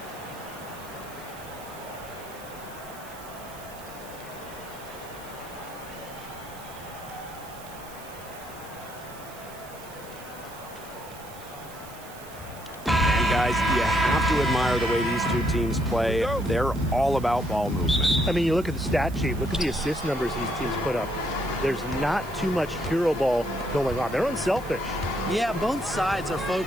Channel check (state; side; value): noise; right; hiss, 19 dB below the sound